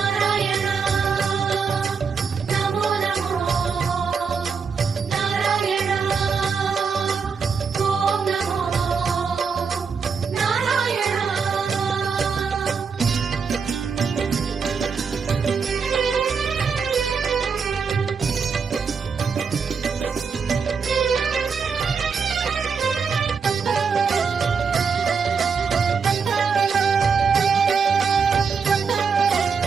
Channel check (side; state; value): left; quieter; 5.6 dB